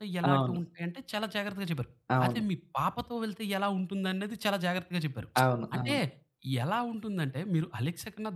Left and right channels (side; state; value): both; identical; correlation 1.00